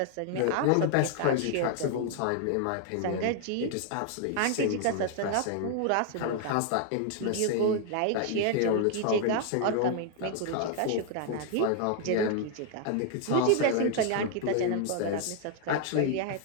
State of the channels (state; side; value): different; both; correlation 0.00